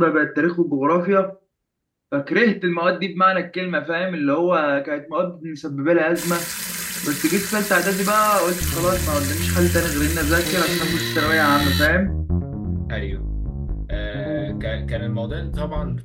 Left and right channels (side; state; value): both; identical; correlation 1.00